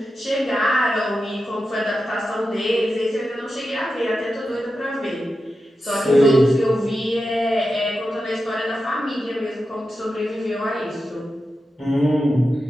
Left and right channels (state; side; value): normal; both; correlation 0.90